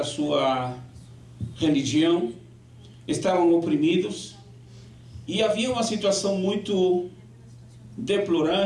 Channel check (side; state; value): both; identical; correlation 1.00